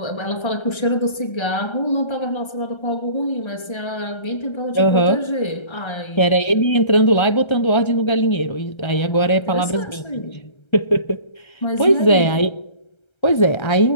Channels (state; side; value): late; right; 1.3 ms